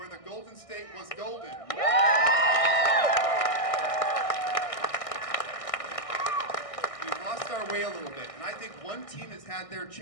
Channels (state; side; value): late; right; 1.6 ms